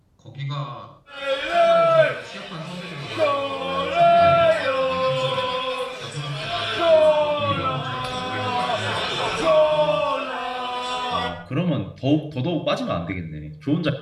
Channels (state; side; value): identical; both; correlation 1.00